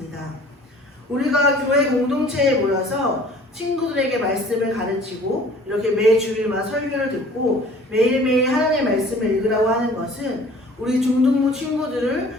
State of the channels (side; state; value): both; normal; correlation 0.50